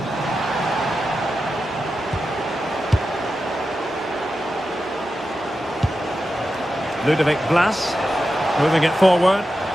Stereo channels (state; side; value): normal; both; correlation 0.90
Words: Ludovic Blas moving it forward.